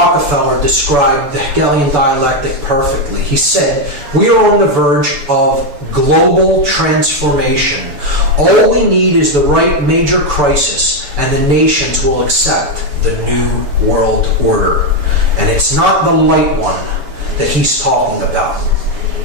described the Hegelian dialectic perfectly. He said, "We are on the verge of global transformation. All we need is the right major crisis, and the nations will accept the new world order." And it's not the light one that he's talking about.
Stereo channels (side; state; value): left; late; 6.9 ms